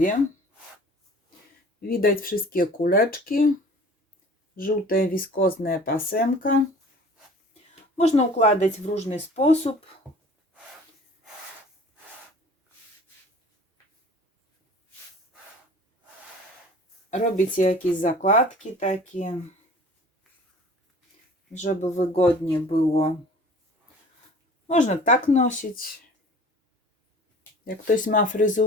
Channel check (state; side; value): normal; both; correlation 0.46